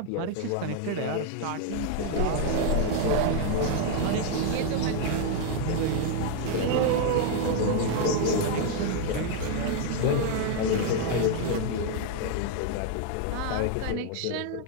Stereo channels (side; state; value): both; different; correlation 0.00